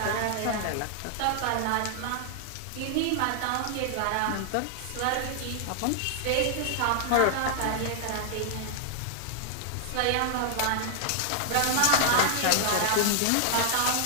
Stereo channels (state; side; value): different; both; correlation 0.00